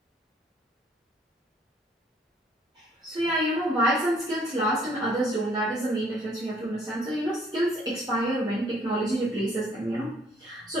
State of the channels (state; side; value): normal; both; correlation 0.62